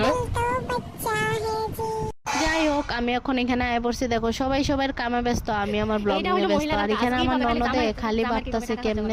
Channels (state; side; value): identical; both; correlation 1.00